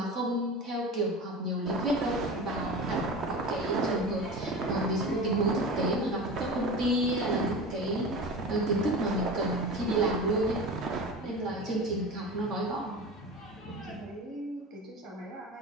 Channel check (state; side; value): normal; both; correlation 0.31